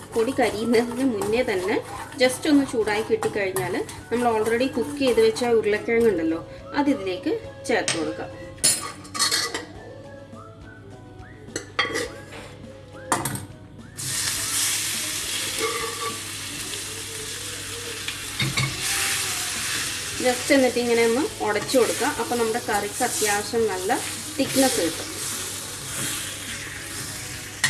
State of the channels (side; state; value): both; identical; correlation 1.00